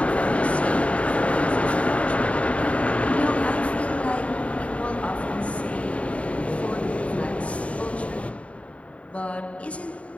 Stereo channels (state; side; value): late; right; 0.065 ms